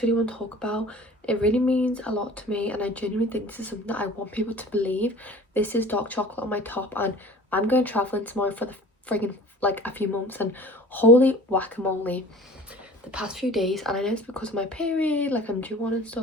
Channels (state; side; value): normal; both; correlation 0.43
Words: really want to talk about. It really means a lot to me, and I genuinely think this is something that I want people to believe. This is dark chocolate on my top, and I'm going traveling tomorrow for the friggin' like a few months, and holy whack-a-mole, the past few days, and I know it's because of my period, like I'm due one and